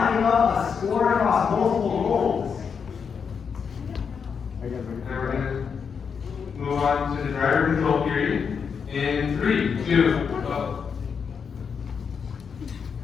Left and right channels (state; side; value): quieter; right; 6.4 dB